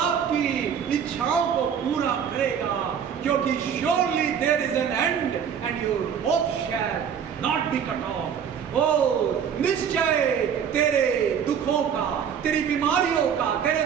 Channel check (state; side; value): quieter; left; 7.8 dB